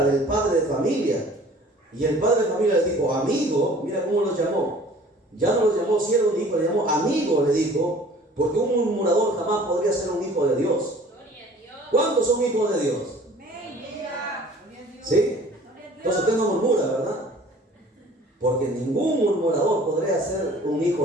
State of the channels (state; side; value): normal; both; correlation 0.49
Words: del padre de familia. Y el padre de familia le dijo: amigo, mira cómo los llamó. Ya no los llamó siervo ni hijo, le llamó amigo, le dijo, porque un murmurador jamás podría ser un hijo de Dios. ¿Cuántos son hijos de Dios? ¿Sí? Entonces usted no murmura, ¿verdad? Porque ningún murmurador podría ser un